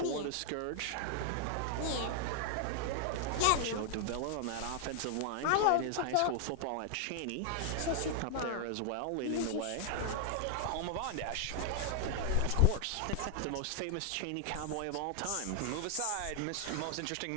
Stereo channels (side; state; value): both; different; correlation 0.00